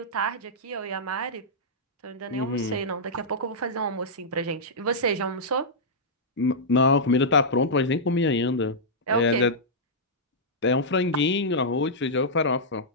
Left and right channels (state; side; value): normal; both; correlation -0.10